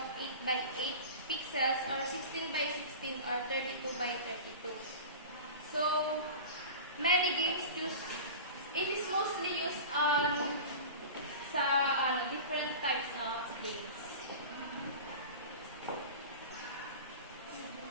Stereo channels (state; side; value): inverted; both; correlation -0.33